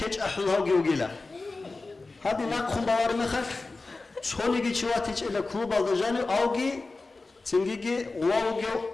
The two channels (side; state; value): right; quieter; 3.5 dB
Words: أحلها جيروجيلا هادين ناقهم بوار مخل شوني جي شواتيج إلى كلوب الدجاني أوجي تنجي واوجي